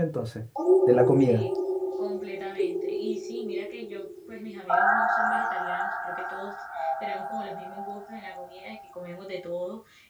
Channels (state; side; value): identical; both; correlation 1.00